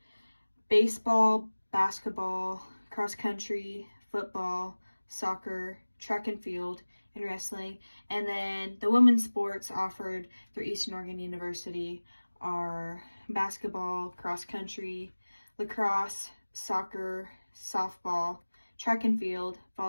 baseball, basketball, cross country, football, soccer, track and field, and wrestling. And then the women's sports offered through Eastern Oregon University are basketball, cross country, lacrosse, soccer, softball, track and field,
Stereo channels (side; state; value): both; inverted; correlation -1.00